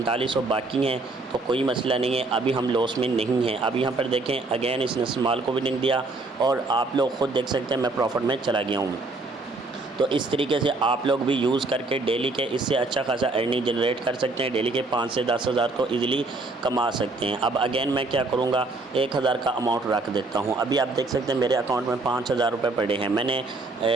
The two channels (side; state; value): left; quieter; 3.3 dB